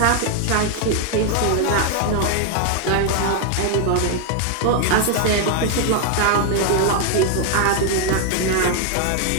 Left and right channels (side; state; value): both; different; correlation 0.00